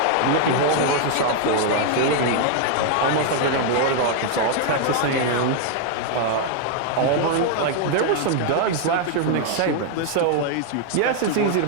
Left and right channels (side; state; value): both; different; correlation 0.00